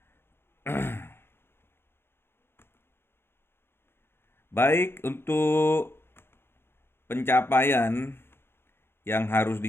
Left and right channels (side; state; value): right; late; 0.11 ms